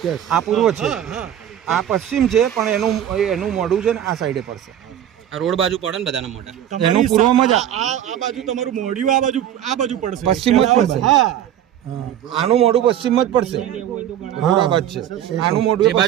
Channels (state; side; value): quieter; left; 10.8 dB